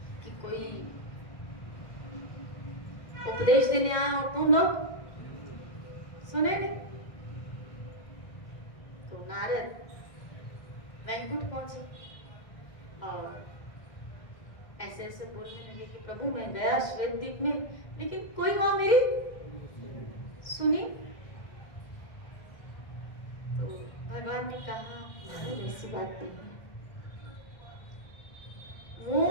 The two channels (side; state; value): right; late; 2.1 ms